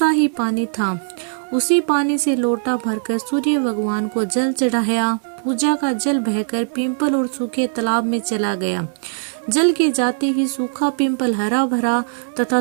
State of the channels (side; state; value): left; silent; digital silence